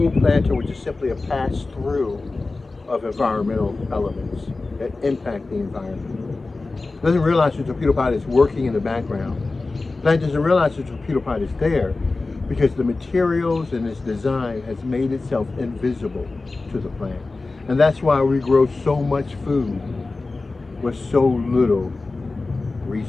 planter was just simply a pass-through of environmental elements that impact the environment. It doesn't realize the torpedopot is working in the background. The plant doesn't realize the torpedopot is there because the materials and its design has made itself invisible to the plant. And that's why we grow so much food with so little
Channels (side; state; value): right; quieter; 3.5 dB